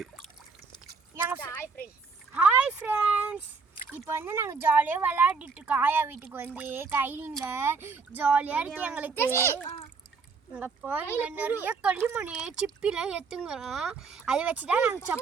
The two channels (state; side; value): quieter; left; 4.8 dB